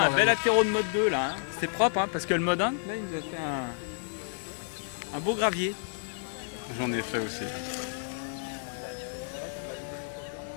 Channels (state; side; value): silent; right; digital silence